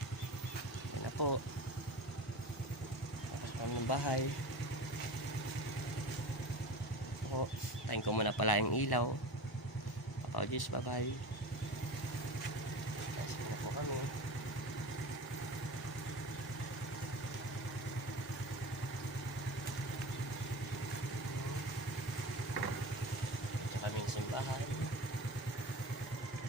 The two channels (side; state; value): both; normal; correlation 0.31